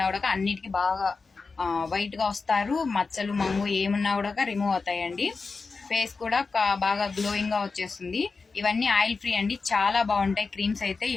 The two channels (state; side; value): quieter; right; 4.4 dB